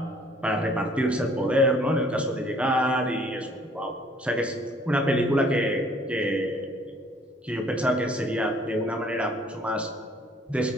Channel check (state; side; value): normal; both; correlation 0.58